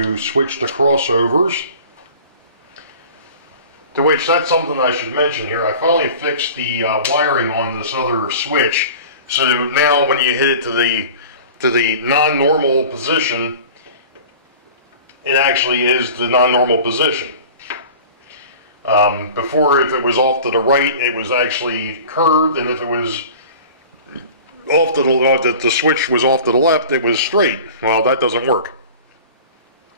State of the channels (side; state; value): both; inverted; correlation -0.41